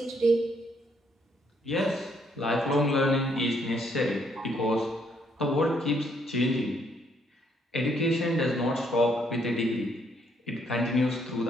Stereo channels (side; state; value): both; normal; correlation 0.70